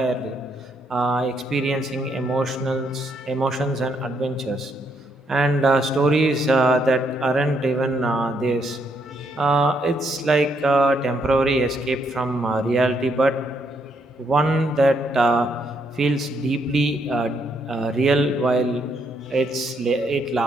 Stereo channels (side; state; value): both; normal; correlation 0.74